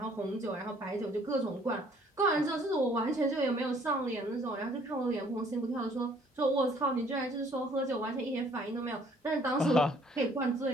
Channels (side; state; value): both; normal; correlation 0.60